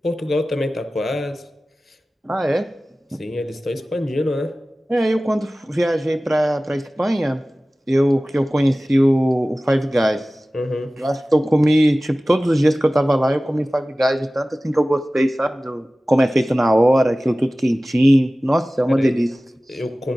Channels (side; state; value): both; normal; correlation 0.97